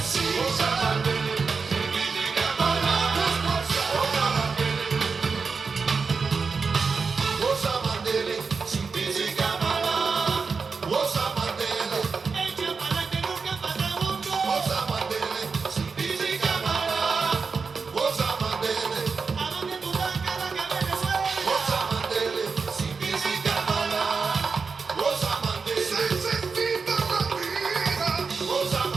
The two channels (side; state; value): left; quieter; 4.9 dB